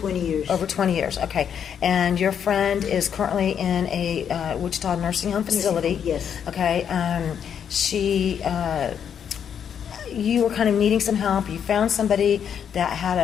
years. Over 20 years, okay. And your friend is currently in a Wichita nursing home facility. Yes. Okay. You were kind of needing some help. You found somebody that had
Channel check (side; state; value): right; quieter; 8.2 dB